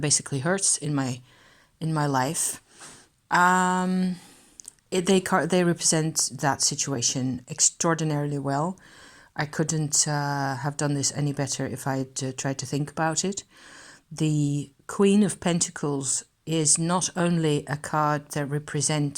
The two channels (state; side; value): identical; both; correlation 1.00